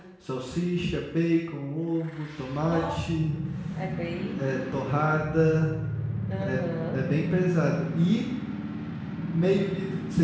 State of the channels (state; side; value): identical; both; correlation 1.00